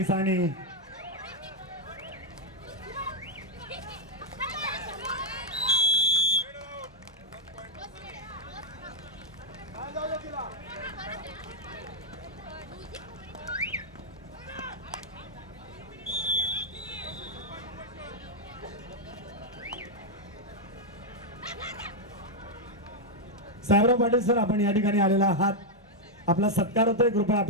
आणि साहेबराव पाटील सर आपण या ठिकाणी आलेला आहात. आपला सत्कार होतोय. कृपया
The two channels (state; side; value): normal; both; correlation -0.02